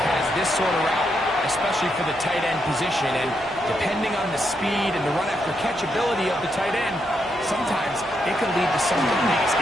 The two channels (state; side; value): noise; left; hum, 25 dB below the sound